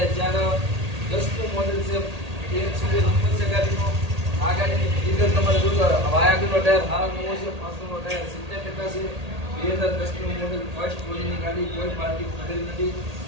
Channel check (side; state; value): left; late; 1.8 ms